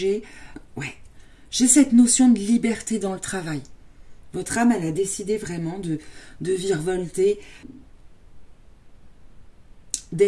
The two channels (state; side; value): identical; both; correlation 1.00